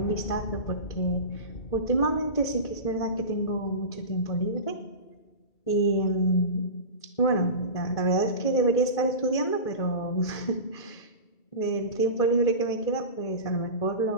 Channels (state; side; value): late; right; 2.3 ms